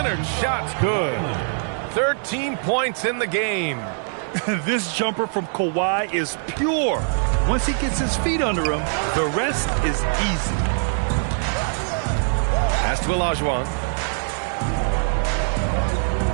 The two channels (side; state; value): left; silent; digital silence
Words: shot's good. 13 points in the game. This jumper from Kawhi is pure. Once he gets his feet under him, the rest is easy. Pass to Olajuwon.